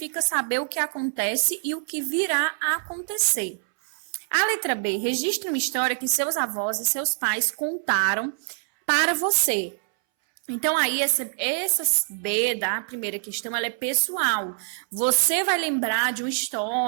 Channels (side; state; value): left; silent; 62 dB below the other